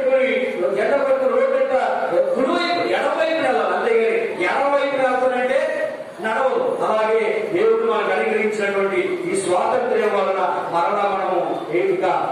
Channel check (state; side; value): identical; both; correlation 1.00